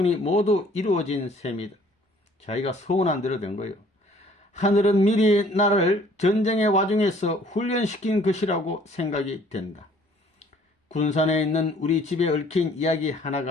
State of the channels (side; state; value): both; normal; correlation 0.57